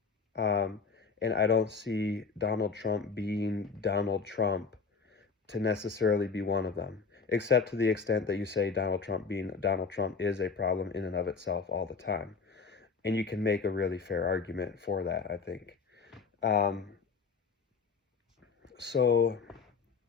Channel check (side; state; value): right; quieter; 5.1 dB